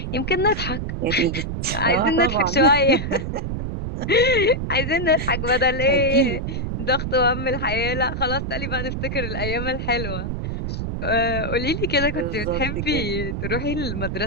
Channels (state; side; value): noise; right; rumble, 4 dB below the sound